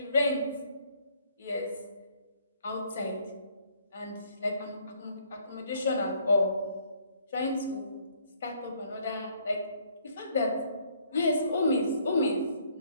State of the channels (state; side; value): inverted; both; correlation -0.65